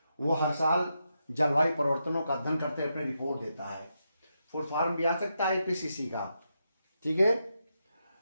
वो हर साल जलवायु परिवर्तनों का अध्ययन करते अपने रिपोर्ट देता है। फुल फॉर्म भी आ सकता है आईपीसीसी का, ठीक है।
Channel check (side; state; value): both; inverted; correlation -0.84